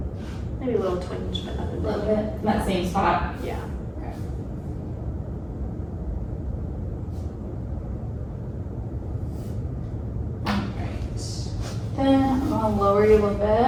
Maybe a little twinge, but nothing A little big. bit, in that same spot. Yeah. Alright. Then I'm gonna lower you a little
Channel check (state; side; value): identical; both; correlation 1.00